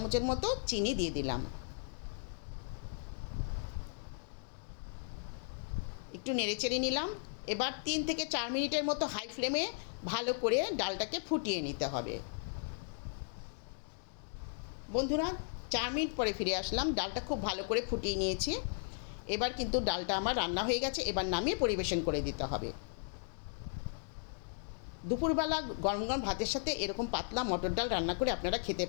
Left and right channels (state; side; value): silent; right; digital silence